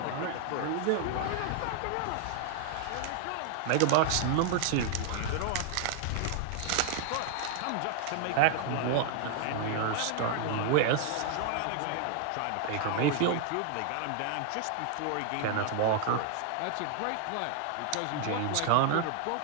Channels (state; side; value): different; both; correlation 0.00